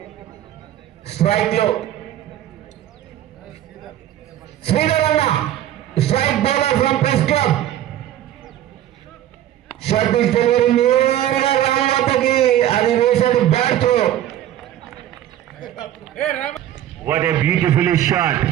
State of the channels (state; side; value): quieter; left; 12.2 dB